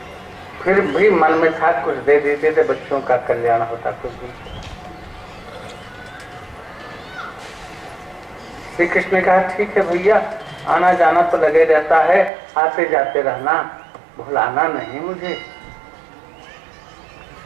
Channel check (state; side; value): drops out; left; at 12.3 s